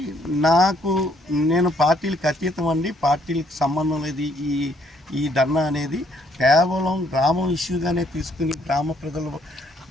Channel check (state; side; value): normal; both; correlation 0.68